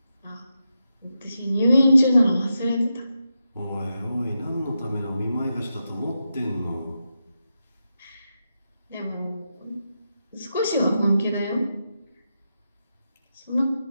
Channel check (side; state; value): both; inverted; correlation -0.88